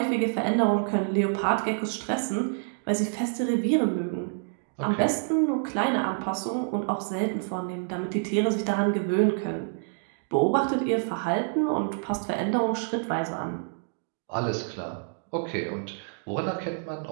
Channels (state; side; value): silent; left; digital silence